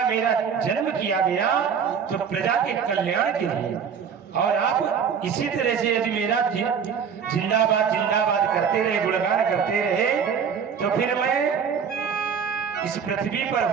मेरा जन्म किया गया तो प्रजा के कल्याण के लिए। और आप इसी तरह से यदि मेरा जिंदाबाद जिंदाबाद करते रहे, गुणगान करते रहे, तो फिर मैं इस पृथ्वी पर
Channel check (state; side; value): quieter; left; 6.9 dB